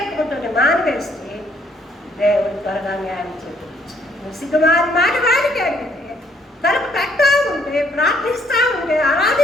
మానివేస్తే దేవుడు త్వరగా న్యాయం చేకూరుస్తాడు. సిగ్గుమారి మాట వాడికి అడిగితే, తలుపు కట్టా ఉంటే, ప్రార్థిస్తూ ఉంటే,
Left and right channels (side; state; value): both; normal; correlation 0.67